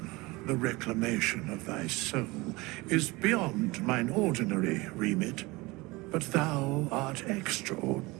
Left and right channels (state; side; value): quieter; left; 23.0 dB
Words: the reclamation of thy soul, is beyond mine ordinary remit, but thou art